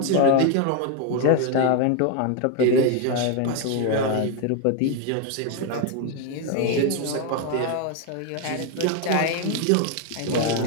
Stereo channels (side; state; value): both; different; correlation 0.01